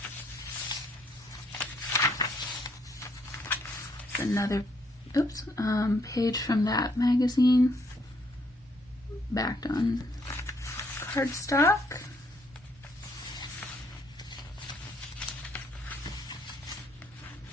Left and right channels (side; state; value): both; normal; correlation 0.70